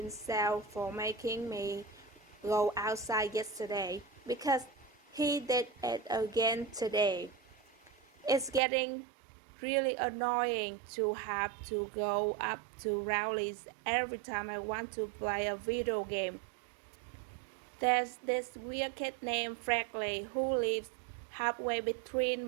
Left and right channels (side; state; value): left; drops out; at 8.6 s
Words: for making me go outside yesterday because he did it again today. It's getting really annoying to have to go up to Rowley's every time I want to play a video game. There's this weird kid named Franklin who lives halfway between